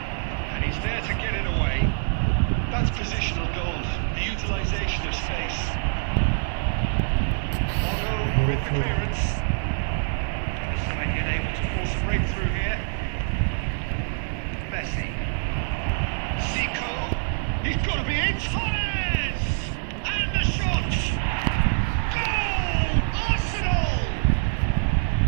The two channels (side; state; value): left; silent; digital silence